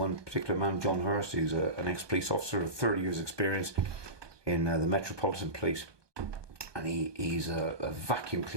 particular man, John Hurst, who's an ex-police officer with 30 years' experience in the Metropolitan Police. And he's a vacuum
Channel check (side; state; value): left; late; 1.2 ms